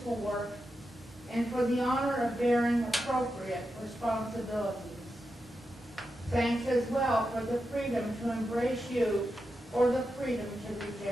work and for the honor of bearing appropriate responsibilities. Thanks as well for the freedom to embrace you or the freedom to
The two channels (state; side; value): normal; both; correlation 0.88